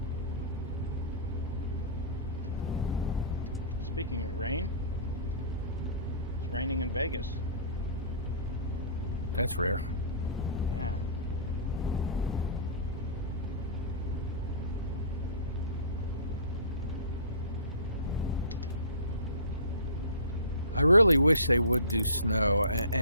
Speaking of rain, it's raining in Vegas. That's rare. Yeah. I really wish they would do snow,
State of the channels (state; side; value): inverted; both; correlation -0.39